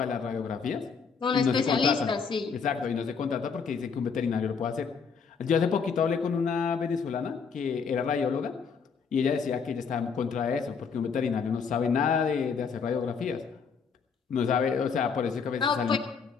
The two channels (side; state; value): right; quieter; 5.9 dB